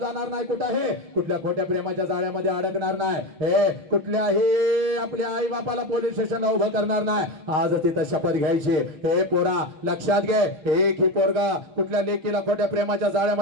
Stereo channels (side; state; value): left; late; 6.5 ms